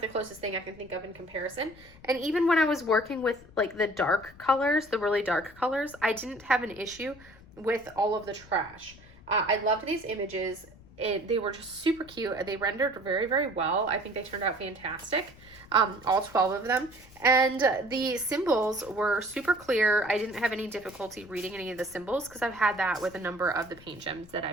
the closest thing I can think of in comparison. And even when I was working with like the dark colors, the really dark colors, I didn't have an issue with all of the trash. I loved these images. They were just super cute. They rendered very, very well. I think they turned out fantastic. All 12 of them. And the symbols were super clear. I didn't have any difficulty reading any of the symbols because I've had that with a number of the paint gems that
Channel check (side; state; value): left; noise; rumble, 22 dB below the sound